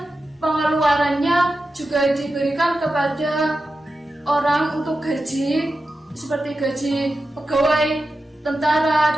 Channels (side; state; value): both; normal; correlation 0.91